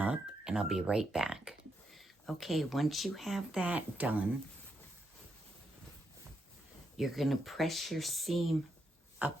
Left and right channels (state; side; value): normal; both; correlation 0.81